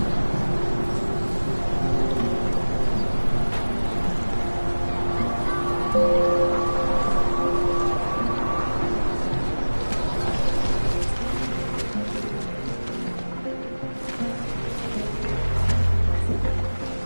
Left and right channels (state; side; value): inverted; both; correlation -1.00